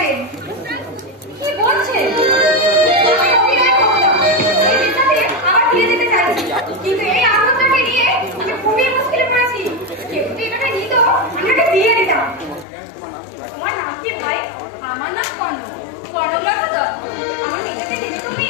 কি বলছে? আমি অভিনয় করতাম, এই বিদ্যাতে আবার ফিরে যেতে চাইছি, কিন্তু এই আনন্দটাকে নিয়ে আমি খুবই মুশকিলে পড়েছি। কেউ যদি এটাকে নিত আমি ওকে দিয়ে দিতাম। তোমার নাম কি ভাই? আমার নাম কর্ণ, কর্ণলতা দত্ত। আমার নিজেকে দিতে তুমি?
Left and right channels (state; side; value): drops out; right; at 12.7 s